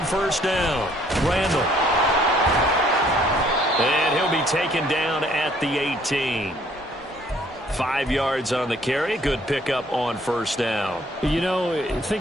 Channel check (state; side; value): normal; both; correlation 0.62